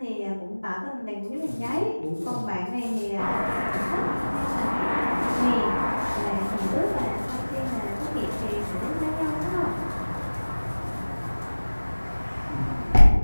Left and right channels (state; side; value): inverted; both; correlation -1.00